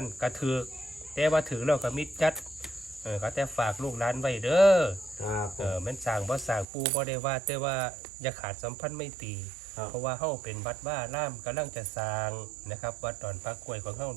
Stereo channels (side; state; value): left; drops out; at 6.7 s